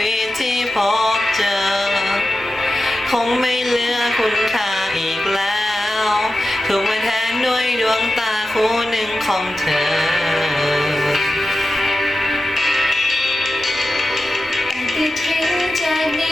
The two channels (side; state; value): both; normal; correlation 0.92